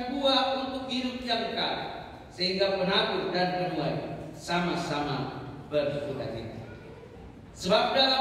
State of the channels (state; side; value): identical; both; correlation 1.00